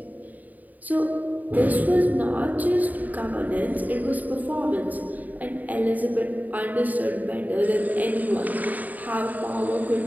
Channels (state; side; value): late; left; 0.080 ms